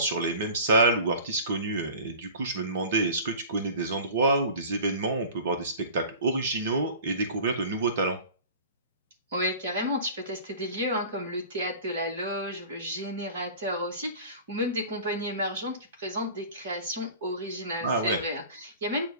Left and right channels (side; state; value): both; inverted; correlation -0.40